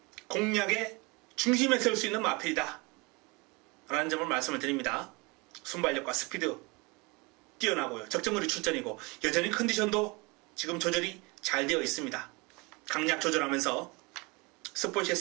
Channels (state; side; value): quieter; left; 26.9 dB